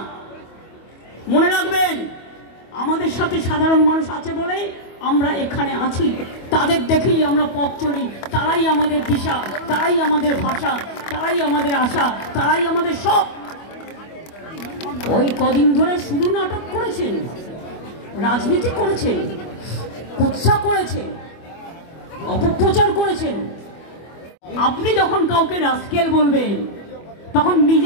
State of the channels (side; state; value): right; late; 25 ms